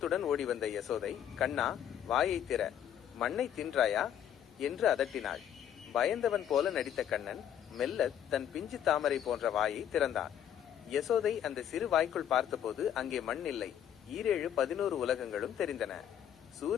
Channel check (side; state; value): right; quieter; 9.8 dB